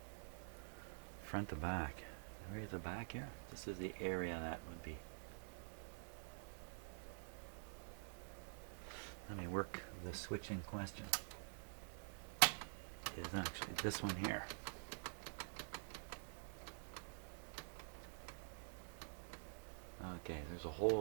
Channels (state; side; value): silent; left; digital silence